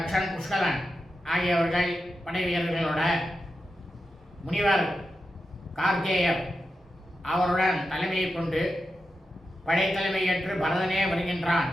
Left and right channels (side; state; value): both; normal; correlation 0.89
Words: புஷ்கலன் ஆகியவர்கள் படை வீரர்களோட முனிவர் கார்கேயர் அவருடன் தலைமையை கொண்டு படைத்தலைமை ஏற்று பரதனே வருகின்றான்